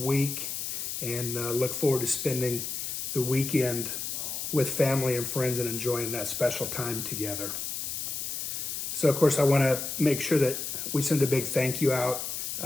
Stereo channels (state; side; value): noise; left; hiss, 4 dB below the sound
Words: and look forward to spending the weekend with family and friends and enjoying that special time together. So, of course, I want to make sure that we send a big thank you out